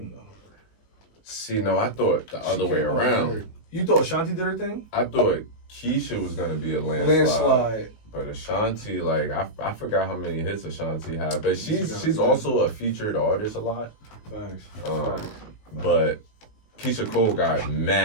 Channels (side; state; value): right; late; 19 ms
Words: though. See, no, I thought the other way around. You thought Ashanti did her thing? I thought Keisha was gonna be a landslide. But Ashanti, like I forgot how many hits Ashanti had, but she's also a featured artist a lot. Facts. But Keisha Cole got